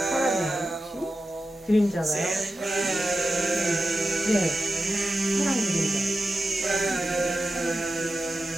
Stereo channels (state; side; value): normal; both; correlation 0.92